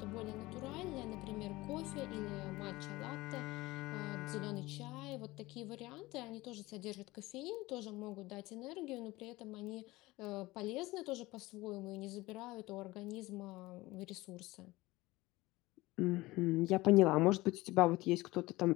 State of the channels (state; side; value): quieter; right; 19.9 dB